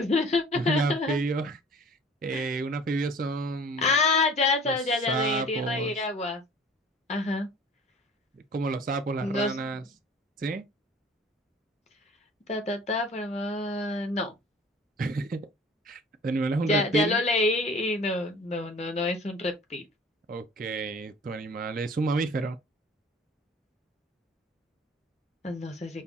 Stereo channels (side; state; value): both; normal; correlation 0.47